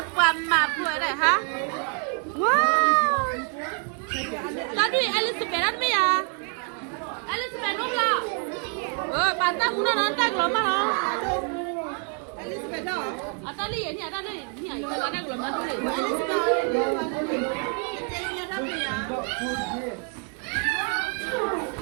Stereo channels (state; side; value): quieter; left; 37.8 dB